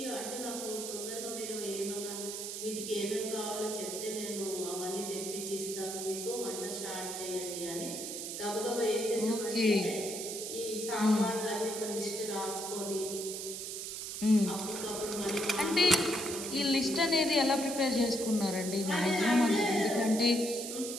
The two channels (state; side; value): noise; right; hiss, 6 dB below the sound